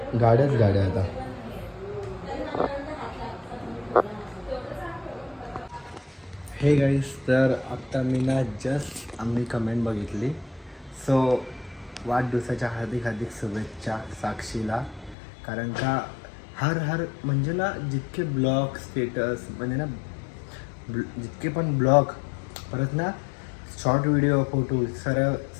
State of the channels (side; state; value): right; drops out; at 15.2 s